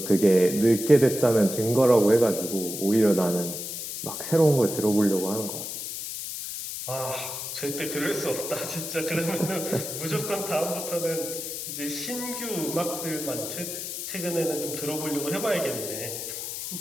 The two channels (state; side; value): noise; left; hiss, 6 dB below the sound